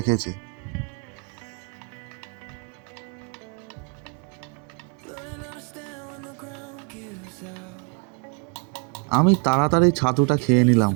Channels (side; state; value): left; quieter; 32.8 dB